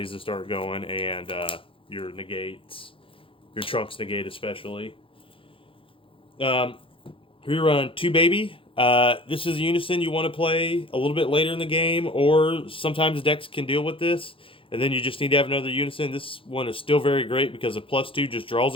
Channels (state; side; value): late; right; 0.26 ms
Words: to start going and your negates. Your Trunks negate especially. We run 2 Baby. This is a Unison you want to play a little bit later in the game, or sometimes decks can deal with this, and then you just need to have another Unison. This one is still very great because a +2 just draws